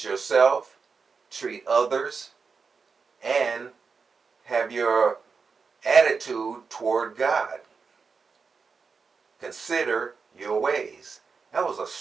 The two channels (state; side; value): quieter; left; 5.1 dB